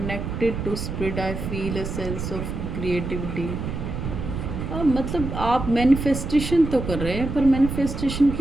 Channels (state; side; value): noise; right; rumble, 5 dB below the sound